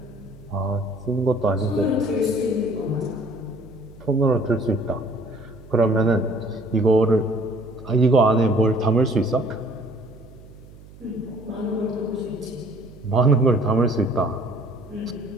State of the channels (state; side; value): noise; right; hum, 21 dB below the sound